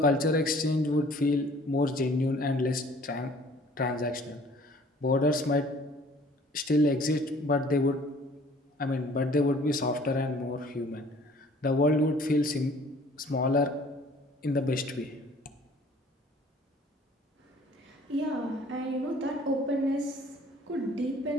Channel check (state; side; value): normal; both; correlation 0.53